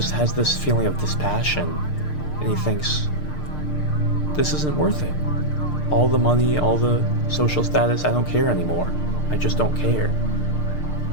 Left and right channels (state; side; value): late; right; 6.6 ms